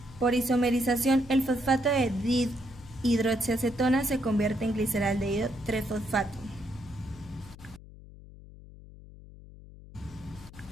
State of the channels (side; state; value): left; noise; hum, 18 dB below the sound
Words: Por isomerización, el fosfato de dihidroxiacetona se convierte en gliceraldehído 3-fosfato.